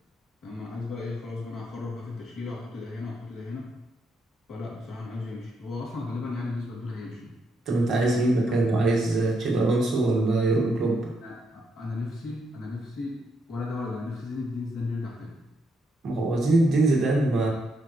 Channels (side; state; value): both; normal; correlation 0.78